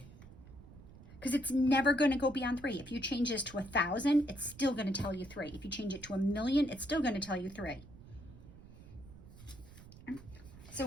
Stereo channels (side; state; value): right; noise; rumble, 18 dB below the sound